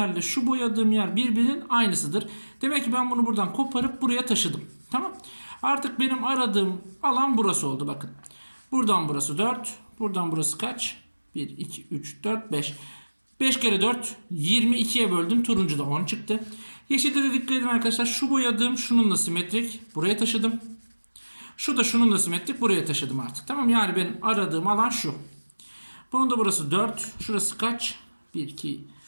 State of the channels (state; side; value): inverted; both; correlation -1.00